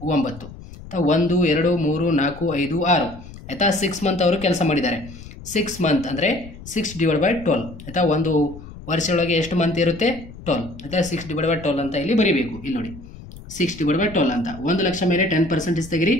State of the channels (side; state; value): left; noise; rumble, 16 dB below the sound